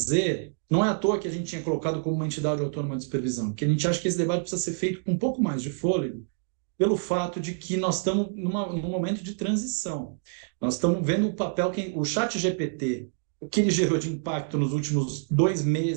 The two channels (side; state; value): left; silent; digital silence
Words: não é à toa que a gente tinha colocado como uma entidade autônoma de supervisão, porque a gente acha que esse debate precisa ser feito com um pouco mais de fôlego, pelo fato de que nós estamos num momento de transição. Nós estamos vendo o papel que o ChatGPT, o que ele gerou de impacto nos últimos 2